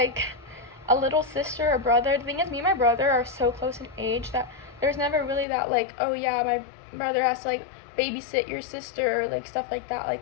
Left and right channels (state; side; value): drops out; right; at 5.5 s